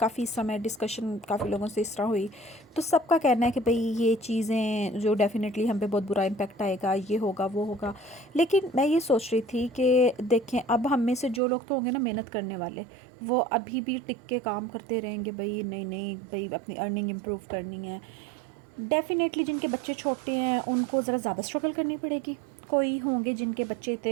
समय डिस्कशन काफ़ी लोगों से इस तरह हुई, तो सबका कहना है कि भाई ये चीज़ें जो डेफिनेटली हम पे बहुत बुरा इम्पेक्ट आएगा, ये होगा वो होगा। लेकिन मैं ये सोच रही थी कि देखें, अब हम में से जो लोग तो होंगे ना मेहनत करने वाले, वो अभी भी टिक के काम करते रहेंगे। भाई नहीं नहीं भाई, अपनी अर्निंग इम्प्रूव करनी है। डेफ़िनेटली जिनके बच्चे छोटे हैं उनको ज़रा ज़्यादा स्ट्रगल करनी पड़ेगी। कोई होंगे जिनके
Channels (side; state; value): left; drops out; at 11.4 s